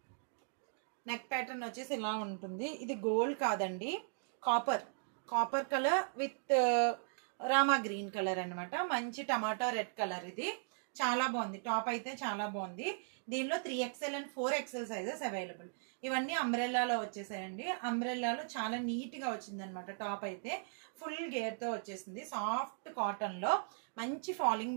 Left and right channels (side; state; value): left; silent; digital silence